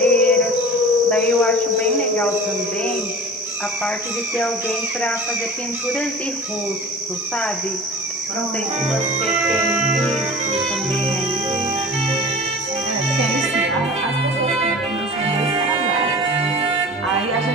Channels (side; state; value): both; normal; correlation 0.38